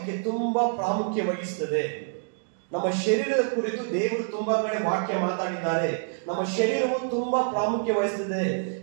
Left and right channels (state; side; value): silent; left; digital silence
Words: ತುಂಬಾ ಪ್ರಾಮುಖ್ಯ ವಹಿಸುತ್ತದೆ. ನಮ್ಮ ಶರೀರದ ಕುರಿತು ದೇವರು ತುಂಬಾ ಕಡೆ ವಾಕ್ಯ ಮಾತಾಡಿದ್ದಾರೆ. ನಮ್ಮ ಶರೀರವು ತುಂಬಾ ಪ್ರಾಮುಖ್ಯ ವಹಿಸುತ್ತದೆ.